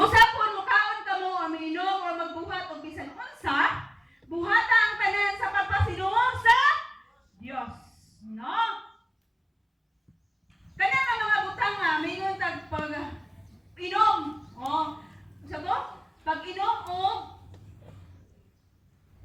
pun mukaon kamo aminom o magbuhat og bisan unsa, buhata ang tanan sa pagpasidungog sa Dios. No? Kana nga mga butang nga mingon tag pag inom. Oh, sa to? Pag inom og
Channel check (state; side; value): identical; both; correlation 1.00